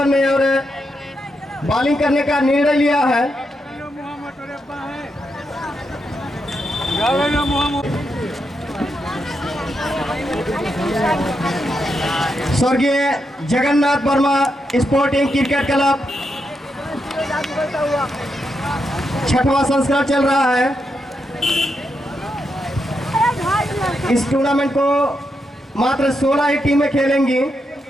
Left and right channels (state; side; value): normal; both; correlation 0.83